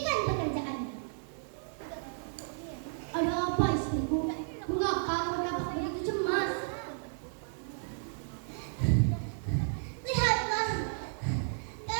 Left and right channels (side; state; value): left; silent; 56 dB below the other